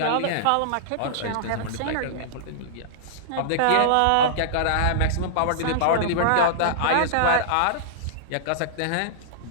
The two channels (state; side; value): different; both; correlation -0.02